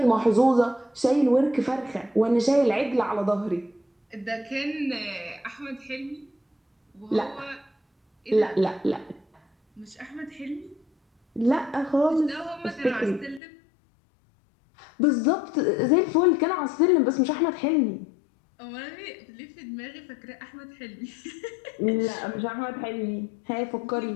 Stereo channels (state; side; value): drops out; right; at 13.4 s